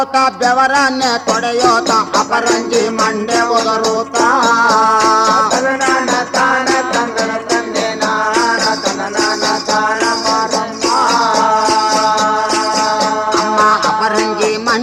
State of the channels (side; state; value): both; identical; correlation 1.00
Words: ಬೆವರನ್ನೇ ತೊಡೆಯೋತ ಅಪರಂಜಿ ಮಂಡೆ ಒದರೋತ ತಂದನ ತಾನ ತಂದನ ತಂದೆ ನಾನ ತಂದನ ತಾನ ಮಾರಮ್ಮ ಅಮ್ಮ ಅಪರಂಜಿ